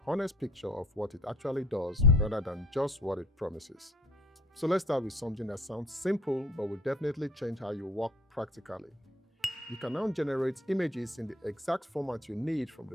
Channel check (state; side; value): normal; both; correlation 0.52